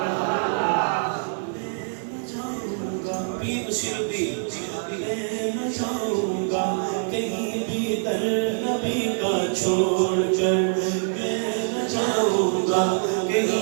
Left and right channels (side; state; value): left; silent; digital silence